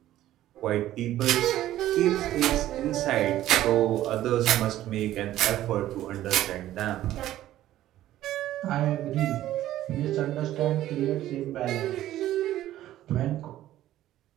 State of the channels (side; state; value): left; quieter; 13.7 dB